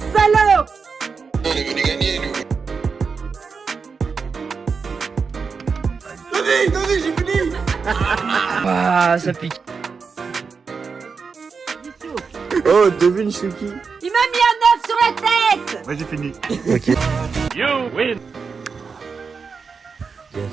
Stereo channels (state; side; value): quieter; left; 5.3 dB